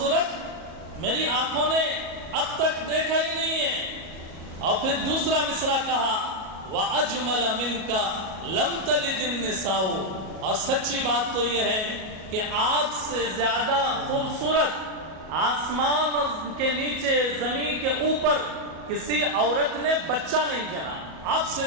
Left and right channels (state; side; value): late; left; 37 ms